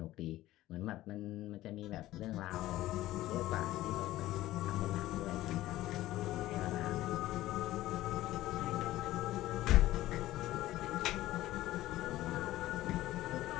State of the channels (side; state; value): right; quieter; 15.7 dB